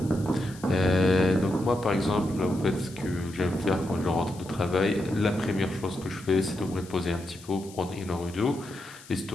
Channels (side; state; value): left; noise; hiss, 20 dB below the sound